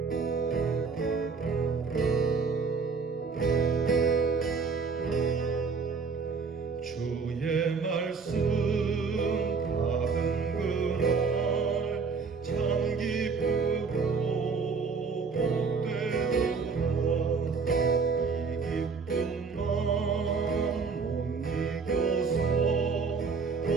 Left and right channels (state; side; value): quieter; left; 5.0 dB